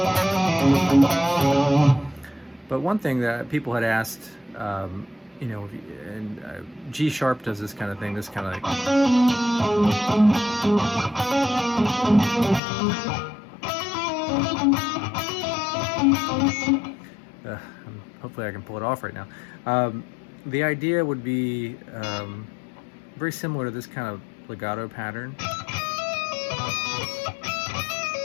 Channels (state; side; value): drops out; right; at 12.6 s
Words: But one thing that people had asked, you know, and G sharp does this kind of thing, this kind of like. Hopefully I can pull it off right now. The idea would be very similar to this kind of legato pattern.